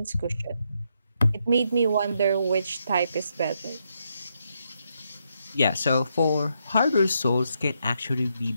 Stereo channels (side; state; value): both; inverted; correlation -0.79